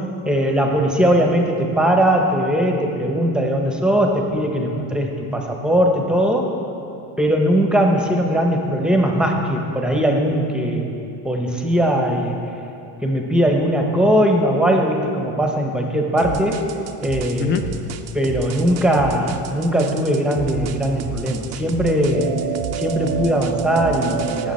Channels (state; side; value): normal; both; correlation 0.57